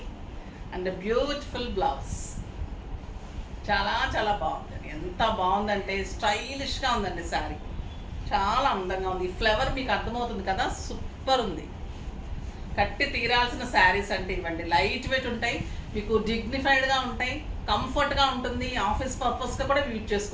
అండ్ బ్యూటిఫుల్ బ్లౌజ్. చాలా చాలా బాగుందండి. ఎంత బాగుందంటే స్టైలిష్గా ఉందండి శారీ. చాలా అందంగా ఉంది. ఈ ఫ్లవర్ మీకు అర్థమవుతుంది కదా, సూపర్ ఉంది. కట్టి తీరాల్సిన శారీస్ అంటే ఇవ్వండి. లైట్ వెయిట్ ఉంటాయి, మీకు డిగ్నిఫైడ్గా ఉంటాయి, కంఫర్ట్గా ఉంటుంది. ఆఫీస్ పర్పస్గా కూడా యూజ్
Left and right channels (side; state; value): both; identical; correlation 1.00